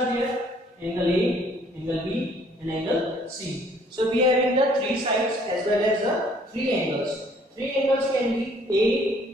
there, angle A, angle B and angle C. So we are having the three sides as well as the three angles. Three angles can be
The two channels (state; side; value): normal; both; correlation 0.61